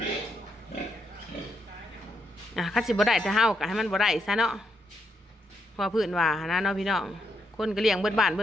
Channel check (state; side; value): normal; both; correlation 0.80